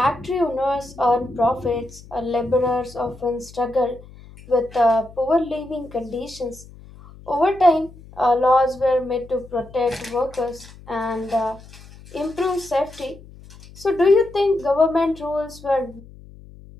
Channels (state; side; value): noise; left; hum, 20 dB below the sound